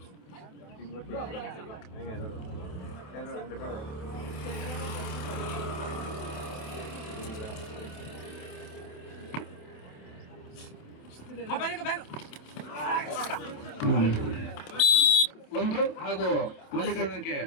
ಒಂದು ಹಾಗೂ ಮಲ್ಲಿಕಾರ್ಜುನಕ್ಕೆ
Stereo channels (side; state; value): right; late; 27 ms